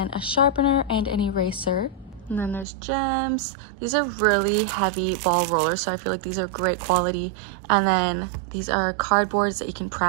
a sharpener and an eraser. And then there's gems. These are really heavy ball rollers, so I feel like these are great quality. And then these are cardboards that you can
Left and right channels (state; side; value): drops out; left; at 2.7 s